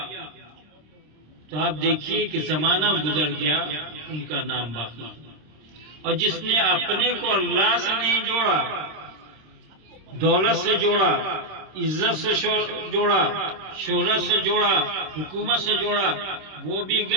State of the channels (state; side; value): late; left; 26 ms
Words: تو آپ دیکھیے کہ زمانہ گزر گیا، ان کا نام باقی۔ اور جس نے اپنے کو اللہ سے نہیں جوڑا، دولت سے جوڑا، عزت سے جوڑا، شہرت سے جوڑا، حکومت سے جوڑا، وہ بھی